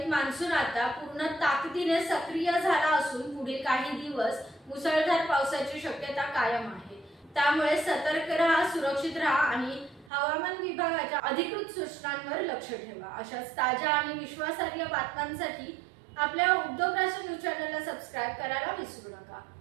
मान्सून आता पूर्ण ताकदीने सक्रिय झाला असून पुढील काही दिवस मुसळधार पावसाची शक्यता कायम आहे। त्यामुळे सतर्क राहा, सुरक्षित राहा आणि हवामान विभागाच्या अधिकृत सूचनांवर लक्ष ठेवा। अशाच ताज्या आणि विश्वासार्ह बातम्यांसाठी आपल्या उद्योग राष्ट्र न्यूज चॅनलला सबस्क्राइब करायला विसरू नका।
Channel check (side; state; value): left; drops out; at 10.1 s